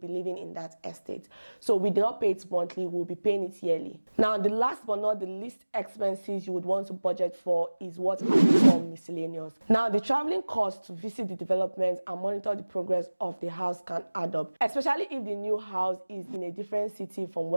living in that estate. So we do not pay it monthly, we'll be paying it yearly. Now, the last but not the least expenses you would want to budget for is what I call miscellaneous. Now, the traveling cost to visit the development and monitor the progress of the house can add up, especially if the new house is in a different city from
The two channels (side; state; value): both; inverted; correlation -1.00